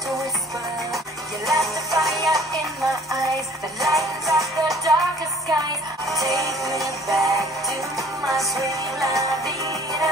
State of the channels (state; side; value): normal; both; correlation 0.54